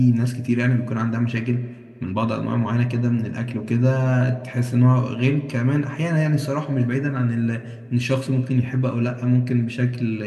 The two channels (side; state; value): both; identical; correlation 1.00